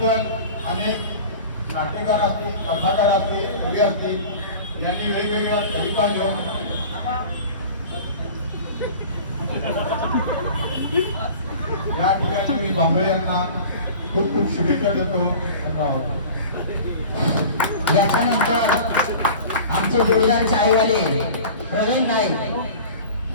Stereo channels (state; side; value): inverted; both; correlation -0.39